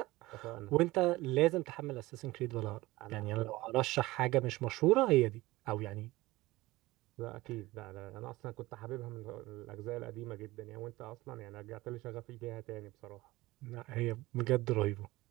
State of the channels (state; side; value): quieter; left; 19.4 dB